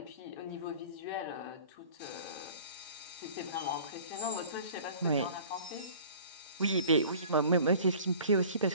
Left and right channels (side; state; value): both; inverted; correlation -0.46